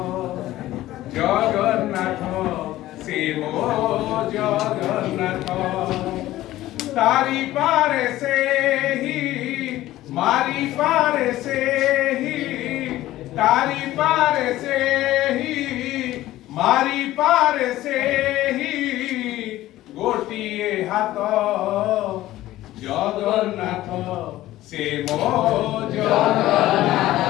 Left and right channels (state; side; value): quieter; right; 15.4 dB